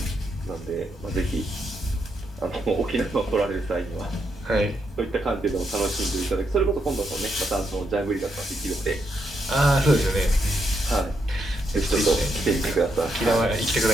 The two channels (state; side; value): normal; both; correlation 0.80